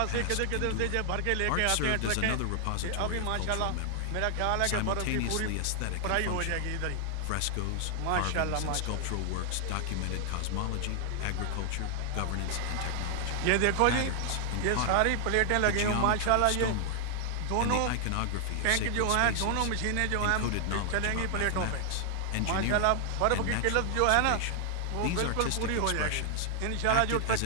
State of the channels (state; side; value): different; both; correlation 0.00